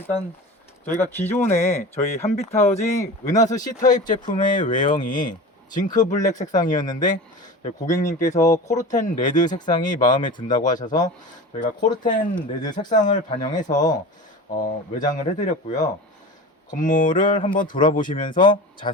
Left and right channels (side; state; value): both; normal; correlation 0.33